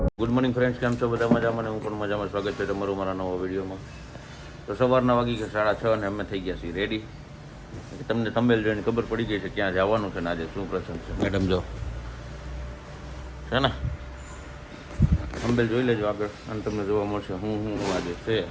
ગુડ મોર્નિંગ ફ્રેન્ડ્સ, કેમ છો બધા મજામાં? હું પણ મજામાં. સ્વાગત છે તમારું મારા નવા વિડીયોમાં. તો સવારના વાગી ગયા 6:30 અને અમે થઈ ગયા છીએ રેડી. તમને થંબનેલ જોઈને ખબર પડી ગઈ છે ક્યાં જવાનું છે ને આજે શું પ્રસંગ છે. મેડમ જો છે ને, થંબનેલ જોઈ લેજો આગળ અને તમને જોવા મળશે હું આજે છે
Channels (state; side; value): identical; both; correlation 1.00